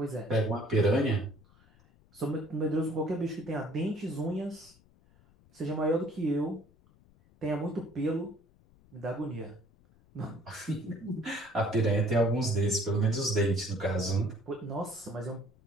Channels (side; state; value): left; noise; rumble, 29 dB below the sound